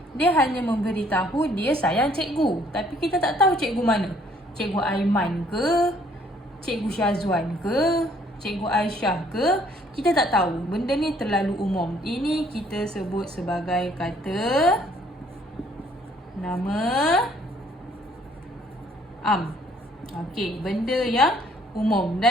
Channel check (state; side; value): normal; both; correlation 0.63